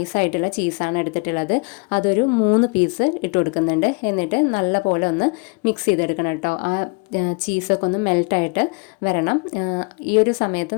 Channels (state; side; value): quieter; right; 34.2 dB